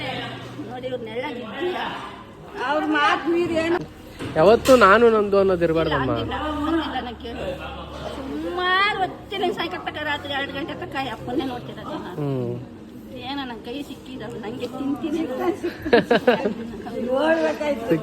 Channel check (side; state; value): both; identical; correlation 1.00